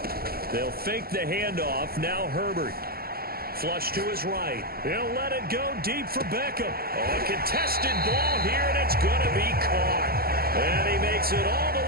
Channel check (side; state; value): left; late; 0.44 ms